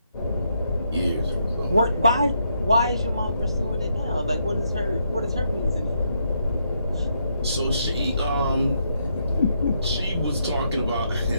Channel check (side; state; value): both; inverted; correlation -0.77